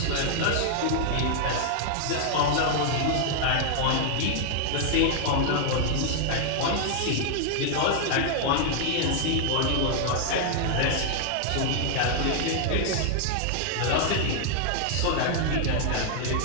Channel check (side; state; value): both; different; correlation 0.00